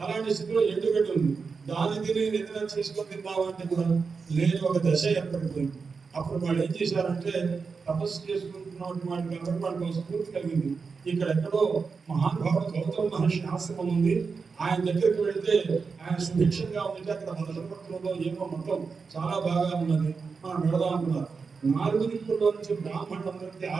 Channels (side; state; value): left; quieter; 5.0 dB